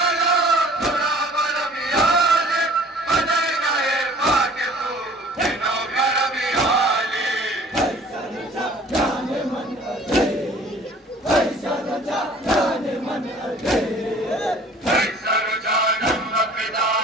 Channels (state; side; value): normal; both; correlation 0.50